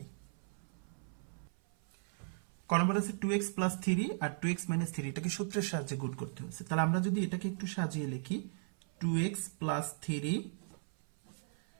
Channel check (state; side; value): silent; left; 53 dB below the other